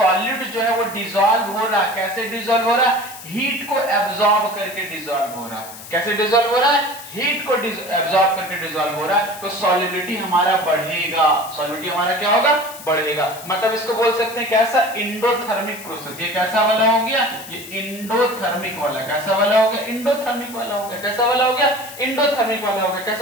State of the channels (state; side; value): noise; left; hiss, 15 dB below the sound